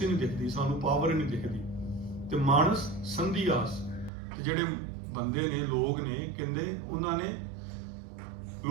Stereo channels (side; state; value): left; drops out; at 4.1 s